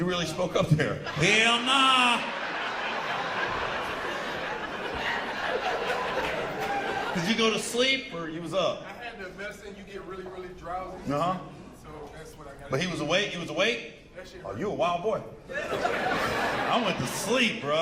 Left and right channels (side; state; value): both; identical; correlation 1.00